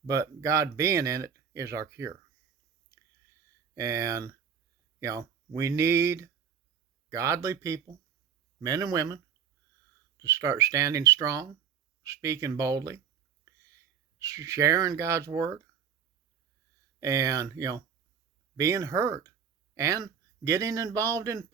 but God being in it is our cure. And, we need godly people, men and women, to start standing strong, speaking boldly, sharing God's word, and, being heard, and getting involved in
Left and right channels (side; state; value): left; quieter; 7.5 dB